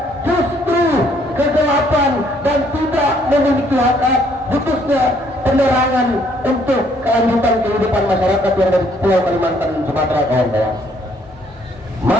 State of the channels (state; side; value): normal; both; correlation 0.66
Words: justru kegelapan dan tidak memiliki hak-hak, khususnya penerangan untuk kelanjutan kehidupan masyarakat yang dari Pulau Kalimantan dan Sumatera, kawan-kawan.